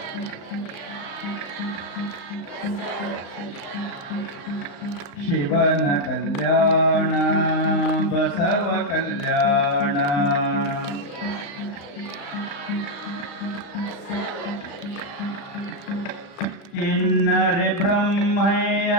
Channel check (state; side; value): late; right; 35 ms